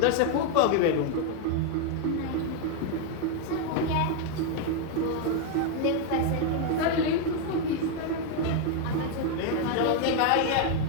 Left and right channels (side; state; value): both; different; correlation 0.01